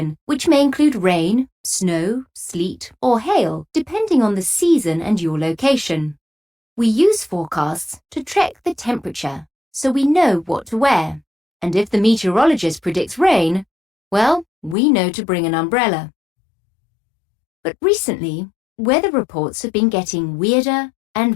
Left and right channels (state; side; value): drops out; right; at 14.8 s